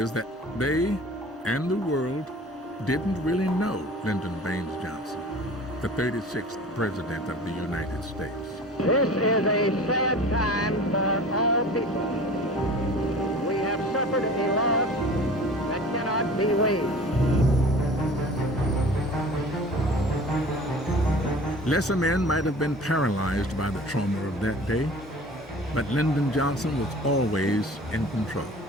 that they and the world didn't really know Lyndon Baines Johnson, the 36th President of the United States. This is a sad time for all people. We have suffered a loss that cannot be weighed. Lesser men might have been paralyzed by the trauma of that day, but Lyndon Johnson was always in control.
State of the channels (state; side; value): normal; both; correlation 0.42